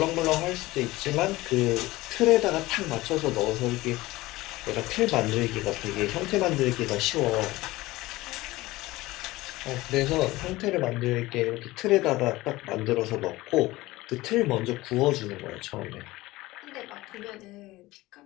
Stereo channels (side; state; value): right; quieter; 19.0 dB